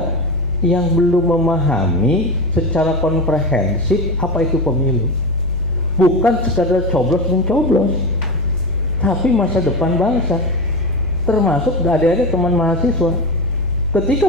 yang belum memahami secara komprehensif apa itu pemilu. Bukan sekadar coblos-mencoblos, tapi masa depan bangsa. Termasuk adik-adik teman mahasiswa.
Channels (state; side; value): normal; both; correlation 0.20